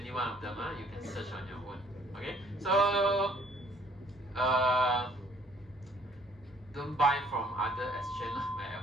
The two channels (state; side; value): normal; both; correlation 0.60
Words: one of them. You can search on your own. Okay, so don't buy from other exchange. My